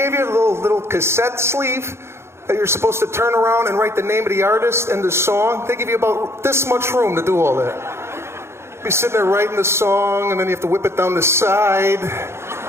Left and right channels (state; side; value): late; left; 0.13 ms